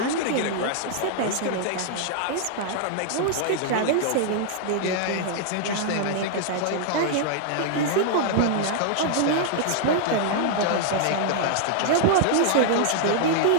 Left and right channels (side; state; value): both; different; correlation -0.01